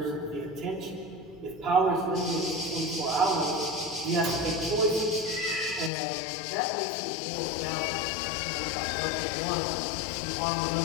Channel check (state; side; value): drops out; right; at 5.9 s